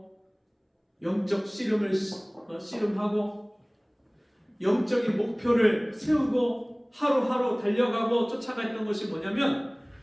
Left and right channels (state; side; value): identical; both; correlation 1.00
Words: 영적 씨름을 씨름하고 영적인 목표를 세우고 하루하루 달려가고 쫓아갔던 것이 뭐냐면